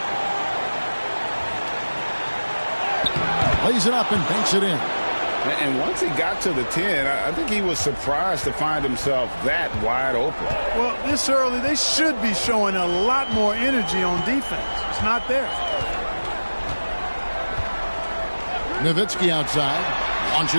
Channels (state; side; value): inverted; both; correlation -1.00